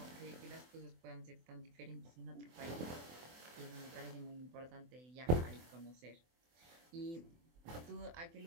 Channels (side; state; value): left; late; 24 ms